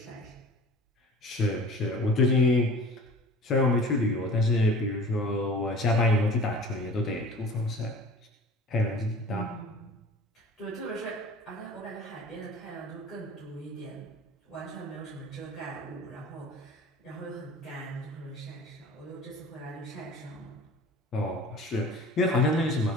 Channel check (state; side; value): normal; both; correlation 0.42